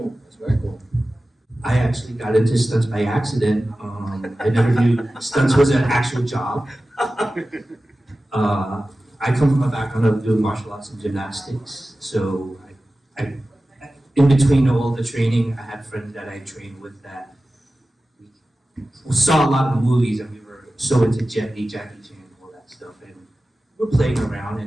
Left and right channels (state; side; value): normal; both; correlation 0.95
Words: That's very cool. I actually got into stunts by accident. I never knew stunts was an actual job. I come from a background of doing martial arts and gymnastics, so I in between all the training, I had friends that I trained with that we saw a lot of movies, and we were so into Jet Li, Jackie Chan, and all that stuff, and we're playing around,